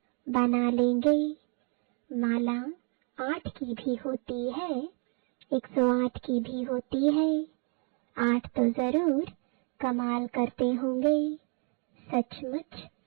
बना लेंगे। माला 8 की भी होती है, 108 की भी होती है। 8 तो जरूर कमाल करते होंगे, सचमुच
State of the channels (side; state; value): left; quieter; 37.8 dB